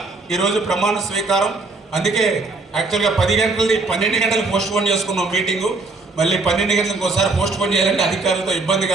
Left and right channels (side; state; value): left; quieter; 3.6 dB